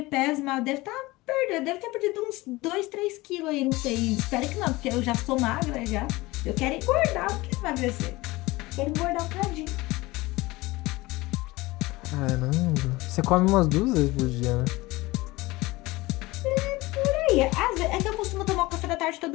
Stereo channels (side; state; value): right; quieter; 20.7 dB